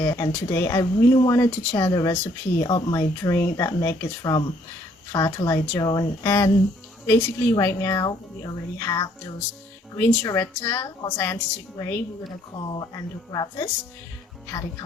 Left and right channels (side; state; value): both; normal; correlation 0.65